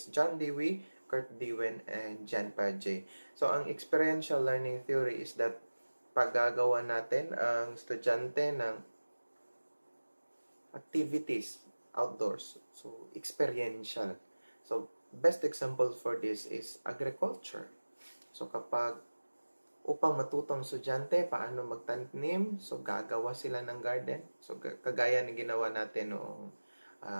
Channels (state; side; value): inverted; both; correlation -1.00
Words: John Dewey, Kurt Dewin, and Jan Paget. So ang experiential learning theory is that paggagawa natin ang estudyante ng activities outdoors. So, experiential. So, best example for this is agriculture. So, kapag upang matutong estudyante paano magtanim, so gagawa sila ng garden. So, kagaya ng ginawa natin noong